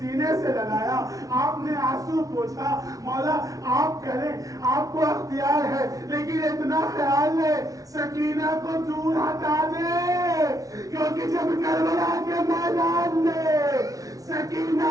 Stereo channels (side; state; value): left; late; 0.17 ms